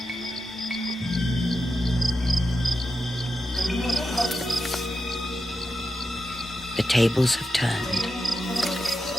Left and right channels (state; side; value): normal; both; correlation 0.89